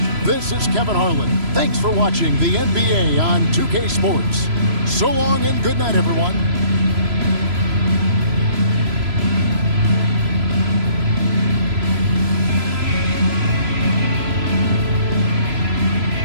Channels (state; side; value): late; left; 3.0 ms